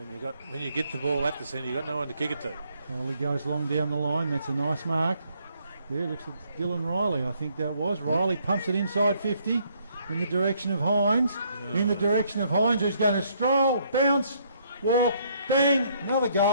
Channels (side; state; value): both; inverted; correlation -0.68